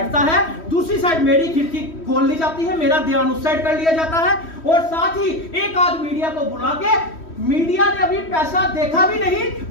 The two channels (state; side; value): late; right; 3.1 ms